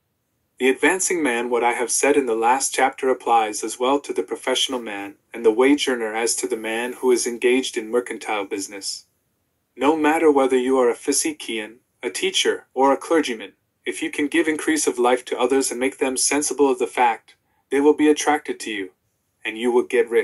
The advancing man. What I have said in the last chapter applies as well to the professional man and the wage earner as to the man who is engaged in mercantile business. No matter whether you are a physician, a teacher, or a clergyman, if you can give increase of life to others and make them sensible of the fact, they will be attracted to you, and you will get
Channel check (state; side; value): identical; both; correlation 1.00